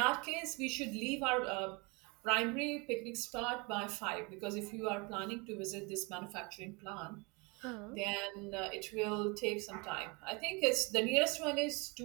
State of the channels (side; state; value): left; quieter; 28.9 dB